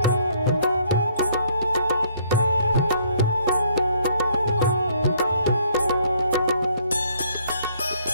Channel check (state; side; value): inverted; both; correlation -0.64